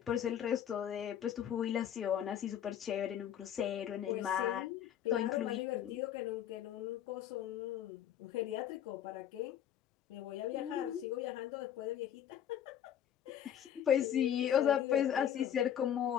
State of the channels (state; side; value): quieter; right; 10.0 dB